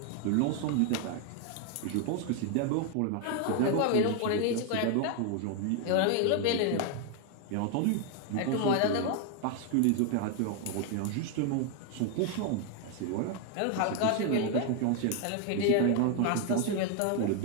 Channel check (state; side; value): different; both; correlation 0.01